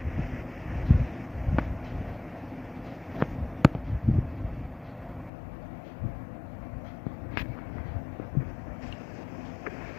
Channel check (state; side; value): drops out; right; at 5.3 s